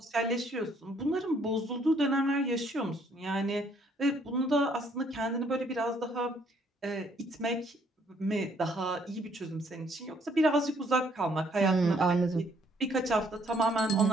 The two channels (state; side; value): normal; both; correlation 0.66